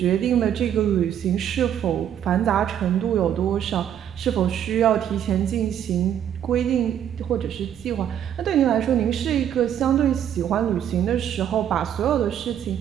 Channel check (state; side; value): quieter; left; 9.8 dB